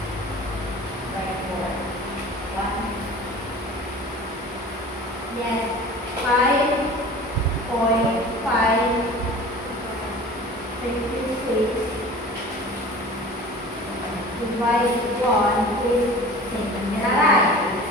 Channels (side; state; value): both; normal; correlation 0.41